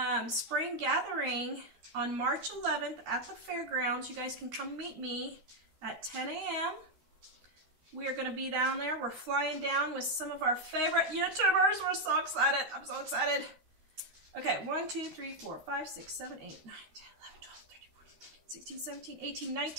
spring gathering on March 11th at the fairgrounds. You guys can come meet me at 10 a.m. We are going to be down there. We're flying down with some of our favorite YouTubers. We're so excited. I'm so excited. Okay, 1, 2, 3, 4, 5, 6, 7, 8, 9, 10, 11, 12, 13, 14, 15, 16, 17, 18,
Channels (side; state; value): left; late; 13 ms